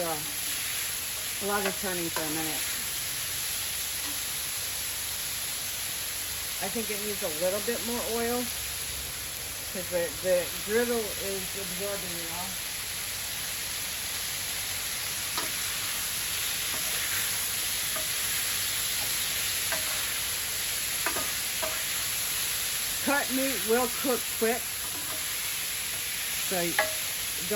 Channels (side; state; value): both; identical; correlation 1.00